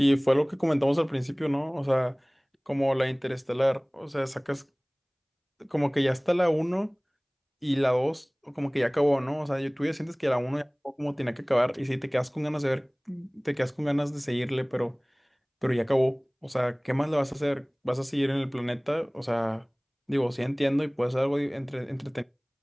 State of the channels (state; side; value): identical; both; correlation 1.00